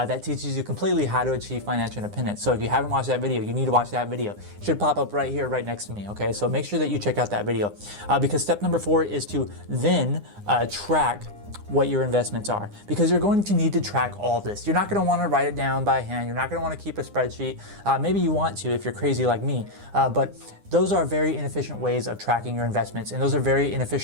teaches you completely how to achieve financial independence. So if you haven't watched that video, you need to watch that video. It should pop up right here, right next to me, okay? So make sure that you check out that video because step number 4 is to then track what your investments are, because you're going to need to track all this. You're not going to want to write it down by hand. You're not going to want to keep a spreadsheet. Maybe you want to if you're crazy like me, but those are very inefficient ways of tracking your investments, and those are very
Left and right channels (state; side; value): late; left; 9.8 ms